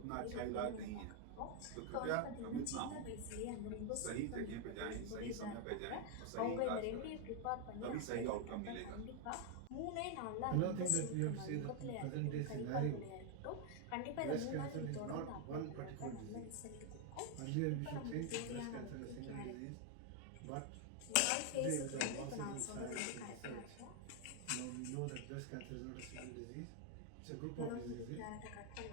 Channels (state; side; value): different; both; correlation 0.00